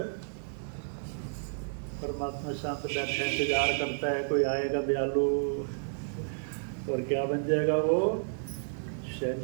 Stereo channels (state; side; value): silent; left; digital silence